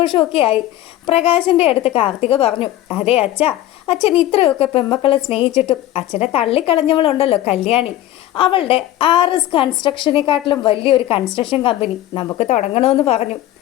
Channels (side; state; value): right; quieter; 13.9 dB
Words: ആയി. പ്രകാശിൻ്റെ അടുത്ത് കാർത്തിക പറഞ്ഞു, അതെ അച്ഛൻ ഇത്രയൊക്കെ പെമ്മക്കളെ സ്നേഹിച്ചിട്ടും അച്ഛനെ തള്ളിക്കളഞ്ഞവളുണ്ടല്ലോ കല്യാണി, അവളുടെ RS കൺസ്ട്രക്ഷനെക്കാട്ടിലും വലിയൊരു കൺസ്ട്രക്ഷൻ കമ്പനി നമുക്ക് തുടങ്ങണമെന്ന് പറഞ്ഞു.